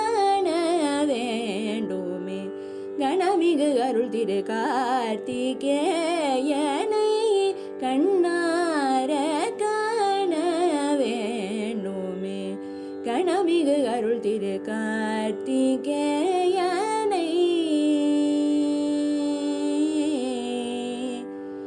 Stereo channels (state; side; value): identical; both; correlation 1.00